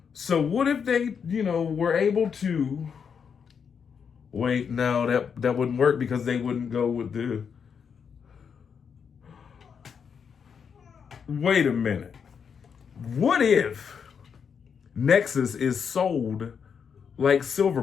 So what if they, were able to wait? No, that wouldn't work because they wouldn't go with the. Wait a minute. What if Nexus is sold like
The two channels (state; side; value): quieter; right; 6.7 dB